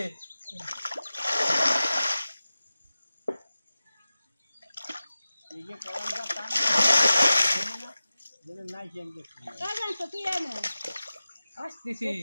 জানতো তুই এনে আসতেছি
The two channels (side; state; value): both; inverted; correlation -0.95